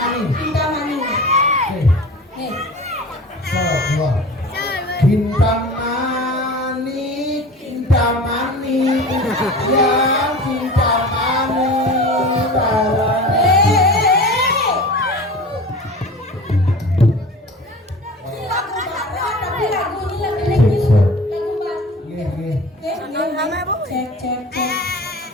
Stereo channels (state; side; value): normal; both; correlation 0.37